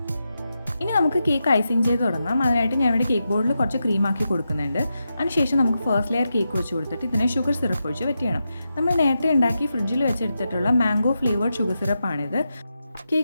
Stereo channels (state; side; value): inverted; both; correlation -0.88